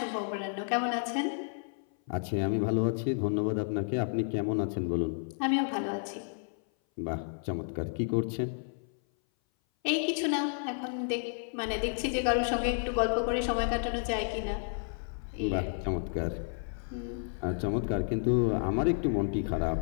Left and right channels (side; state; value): right; silent; 57 dB below the other